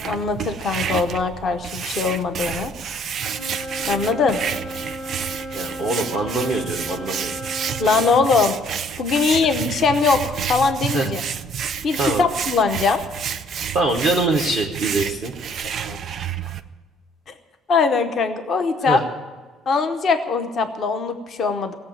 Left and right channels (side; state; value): both; normal; correlation 0.61